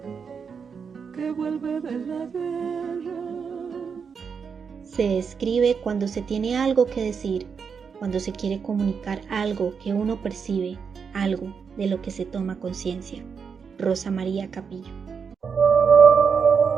que vuelve de la guerra. Se escribe cuando se tiene algo que decir, cuando se quiere comunicar algo que uno percibe, algo de lo que se toma conciencia. Rosa María Capillo.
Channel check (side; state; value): left; quieter; 6.1 dB